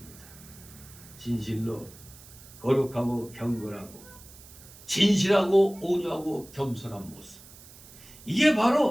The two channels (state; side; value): noise; right; hiss, 20 dB below the sound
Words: 진실로 거룩하고 경건하고 진실하고 온유하고 겸손한 모습, 이게